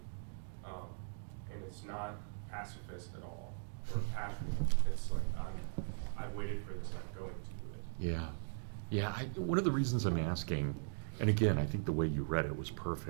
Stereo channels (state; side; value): silent; left; digital silence